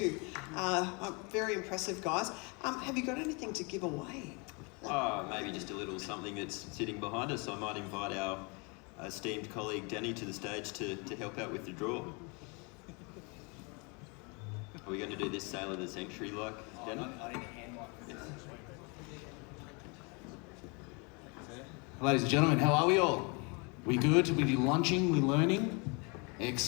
Very impressive, guys. Have you got anything to give away? Maybe just a little something that's sitting behind us. I might invite our esteemed colleague Danny to the stage to help out with the draw. Are we going to do this Sail of the Century like, Danny? I need a hand mic. Ladies and gentlemen, how are we all? We good? We lunching? We learning?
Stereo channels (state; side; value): quieter; right; 31.5 dB